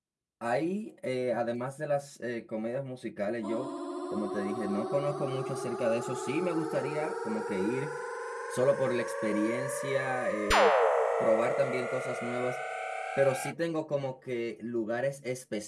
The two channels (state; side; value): identical; both; correlation 1.00